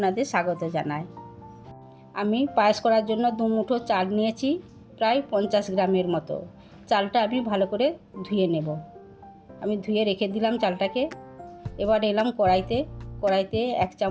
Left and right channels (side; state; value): both; identical; correlation 1.00